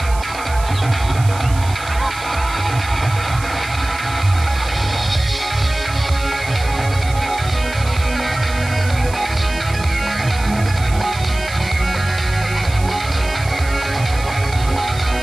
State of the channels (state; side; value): noise; right; hiss, 15 dB below the sound